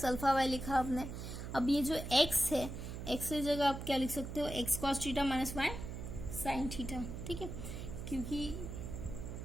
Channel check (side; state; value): right; noise; hum, 7 dB below the sound